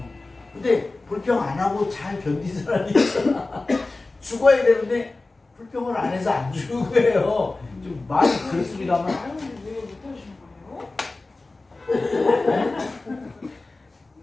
근데 불평 안 하고 잘 견딘 사람이 있잖아. 죽어야 되는데 불평을 안 해서 안 죽은 거예요. 좀 말이 그렇습니다만. 왜 못하시는 거예요?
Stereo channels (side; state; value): right; quieter; 3.3 dB